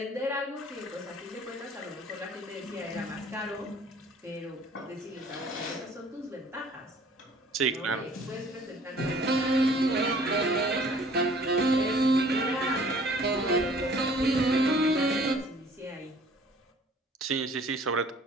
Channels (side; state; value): both; normal; correlation 0.53